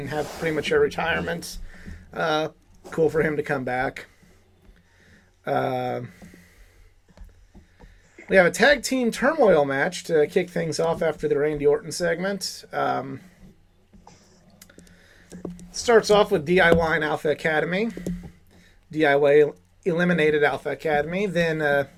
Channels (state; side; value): identical; both; correlation 1.00